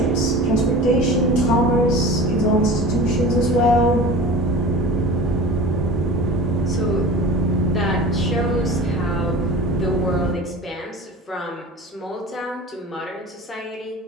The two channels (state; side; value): normal; both; correlation 0.36